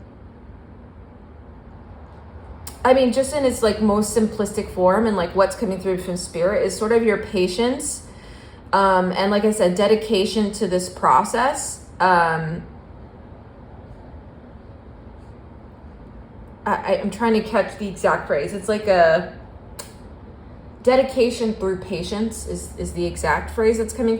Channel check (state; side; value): identical; both; correlation 1.00